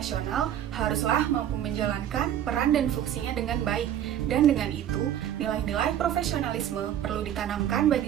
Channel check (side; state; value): left; quieter; 10.6 dB